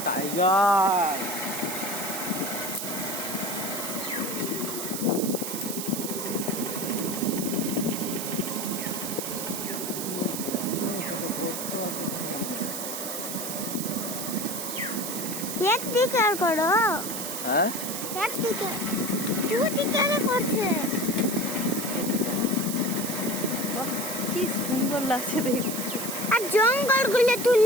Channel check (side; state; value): right; noise; hiss, 5 dB below the sound